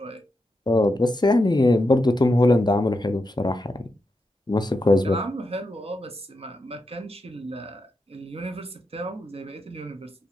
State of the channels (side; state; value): both; normal; correlation 0.86